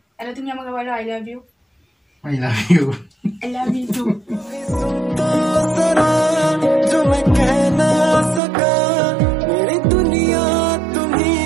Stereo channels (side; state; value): left; drops out; at 8.4 s